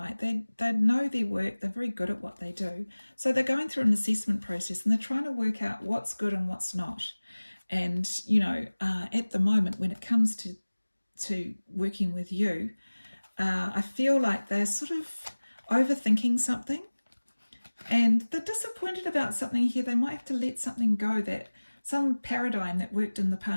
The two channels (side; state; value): both; inverted; correlation -1.00